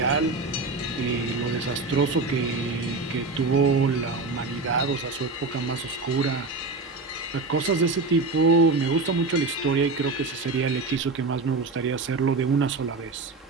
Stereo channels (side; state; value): left; quieter; 3.6 dB